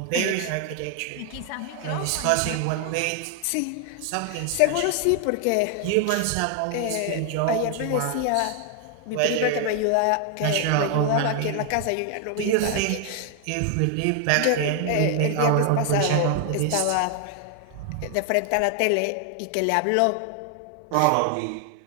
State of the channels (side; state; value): both; different; correlation 0.00